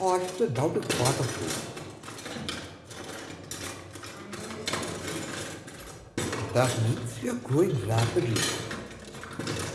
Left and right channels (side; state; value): both; identical; correlation 1.00